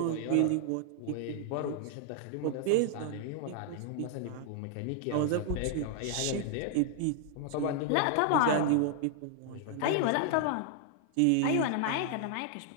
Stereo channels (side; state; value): both; different; correlation 0.00